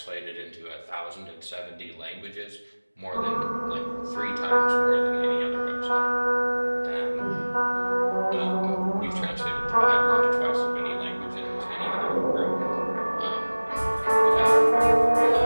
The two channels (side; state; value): both; inverted; correlation -1.00